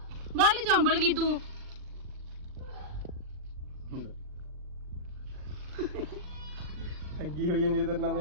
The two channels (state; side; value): late; left; 39 ms